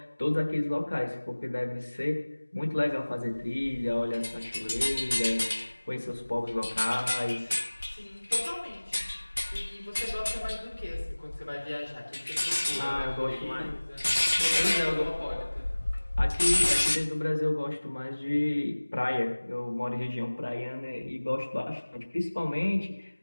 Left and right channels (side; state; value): both; inverted; correlation -1.00